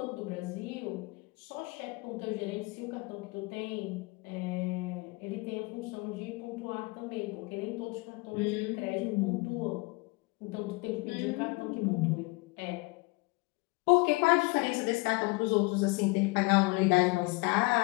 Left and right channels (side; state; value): right; quieter; 25.5 dB